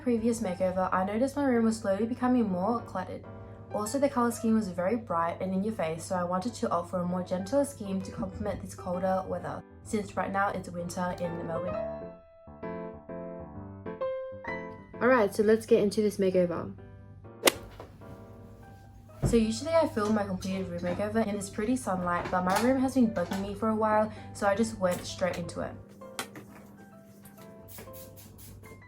makeover, I noticed my room was slowly becoming more cluttered. Also, the color scheme was very bright and in your face, so I wanted to opt for a more gentler scheme to complement this colder weather, since right now it's winter in Melbourne. Alright, so let's get into this makeover. So usually I film my completed room makeover in this pretty sunlight, but my room has been bugging me for a while, so I just went straight into it.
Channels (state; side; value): identical; both; correlation 1.00